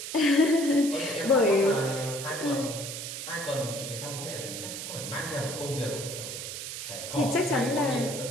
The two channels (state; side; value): noise; right; hiss, 7 dB below the sound